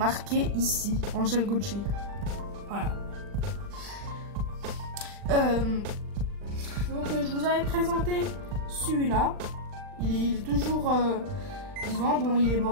ici. Angel Gotchi. Voilà. Donc je vous avais présenté celui-là. Il est toujours vivant. Bon, il est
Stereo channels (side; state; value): left; late; 39 ms